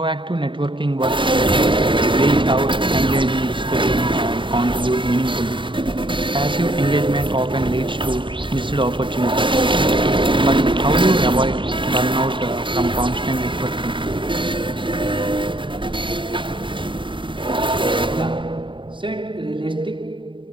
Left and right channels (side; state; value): left; late; 0.24 ms